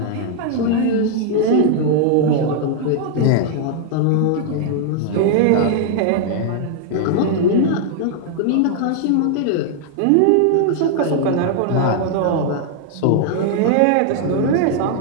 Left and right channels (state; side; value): different; both; correlation 0.00